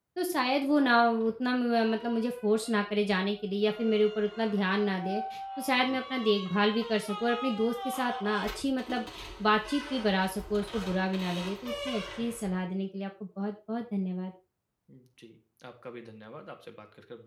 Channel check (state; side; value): identical; both; correlation 1.00